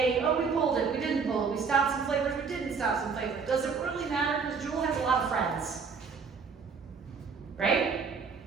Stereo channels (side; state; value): left; quieter; 5.4 dB